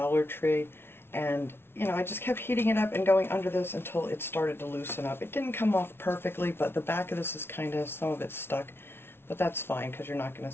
Tree. And you know, I just kept heating it up and going under this until it started to loosen up. It didn't come off perfectly, but the back of this is kind of, some of it's stuck. But that's fine because you're not going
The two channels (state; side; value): late; right; 0.11 ms